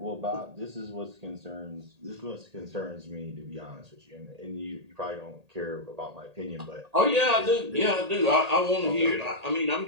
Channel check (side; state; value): left; late; 1.8 ms